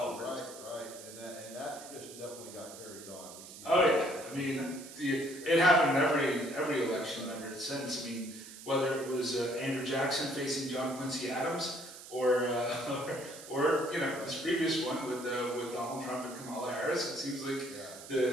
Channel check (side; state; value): right; noise; hiss, 15 dB below the sound